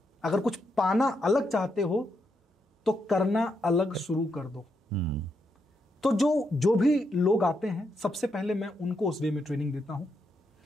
अगर कुछ पाना अलग चाहते हो तो करना अलग शुरू कर दो। तो जो भी लोग आते हैं, सबसे पहले मैं उनको उस वे में ट्रेनिंग देता हूं।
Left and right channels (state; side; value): normal; both; correlation 0.81